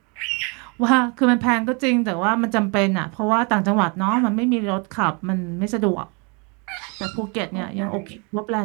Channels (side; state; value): left; quieter; 32.8 dB